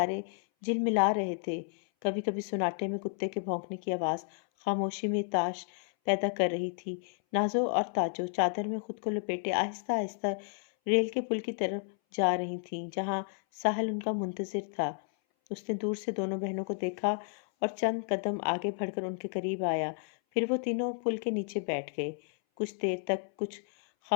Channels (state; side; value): silent; right; 57 dB below the other